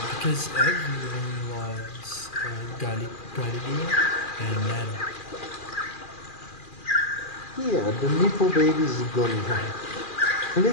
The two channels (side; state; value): right; late; 2.4 ms